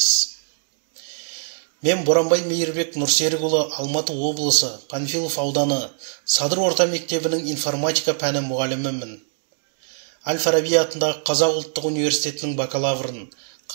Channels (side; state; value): left; silent; digital silence